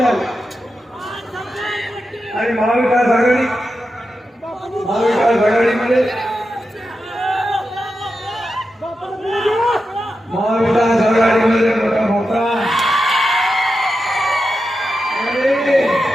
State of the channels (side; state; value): both; normal; correlation 0.89